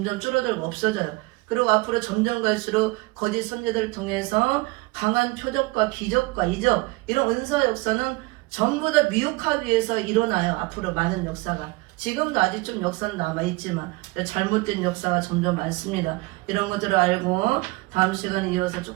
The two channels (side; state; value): left; quieter; 23.9 dB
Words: 줄어들고 없어져요. 그리고 앞으로 점점 갈수록 거짓 선지자들을 통해서 강한 표적과 기적과 이적 이런 은사 역사는 전부 다 미혹하기 위해서 일어나요. 앞으로 많은 역사가. 지금도 아직 좀 역사는 남아있지만 잘못된 역사가 점점 많습니다. 이런 것들을 알고 다음 시간에 이어서